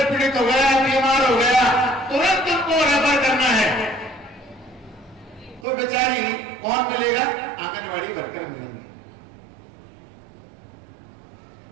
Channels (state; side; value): drops out; left; at 5.7 s